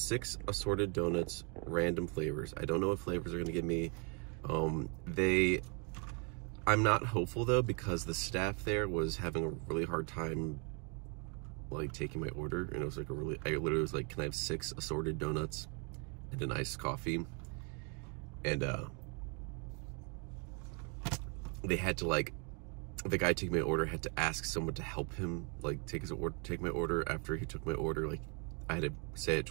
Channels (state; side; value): quieter; left; 35.6 dB